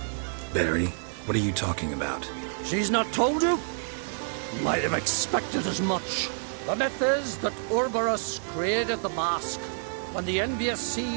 Barry, what are you talking about? She's not told you? Might have expected as much. The myth is that Orberus created the mask when the envious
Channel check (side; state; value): left; silent; digital silence